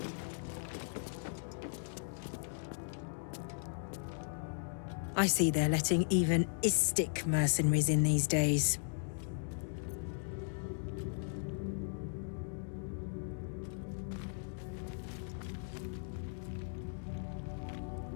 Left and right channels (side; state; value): right; silent; digital silence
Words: I see they're letting even Istik mercenaries in these days.